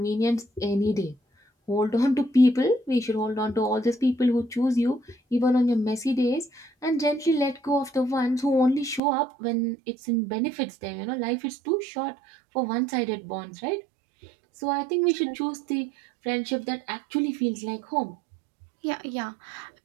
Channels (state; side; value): drops out; left; at 9.0 s